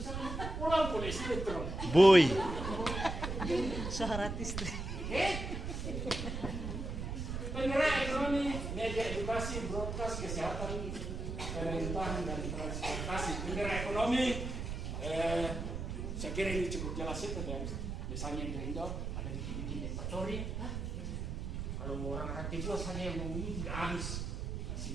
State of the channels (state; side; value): noise; right; rumble, 4 dB below the sound